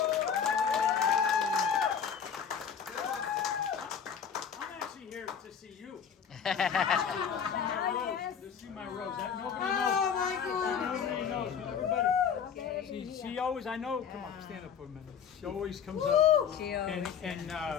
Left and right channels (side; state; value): right; quieter; 7.4 dB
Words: I'm actually here to see you. To see my rose. Nobody knows. Everybody. She always, I know, come on, stand up for a minute. She always comes up. She always